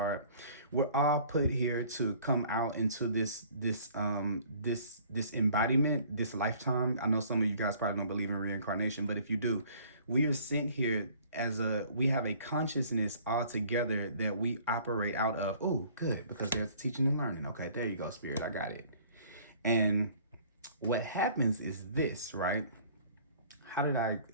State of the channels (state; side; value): inverted; both; correlation -0.54